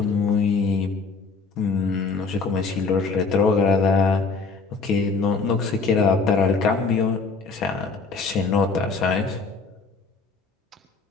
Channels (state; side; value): quieter; right; 4.4 dB